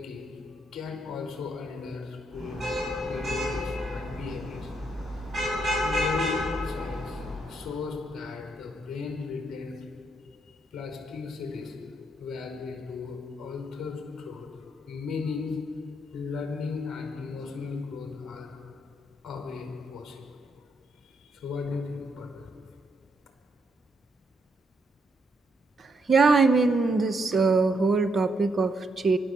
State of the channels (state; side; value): normal; both; correlation 0.77